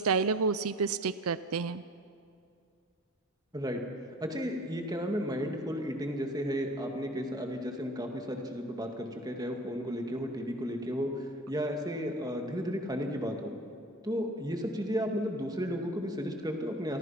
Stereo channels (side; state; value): both; normal; correlation 0.43